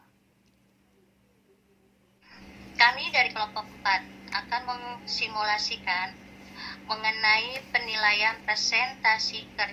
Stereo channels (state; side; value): identical; both; correlation 1.00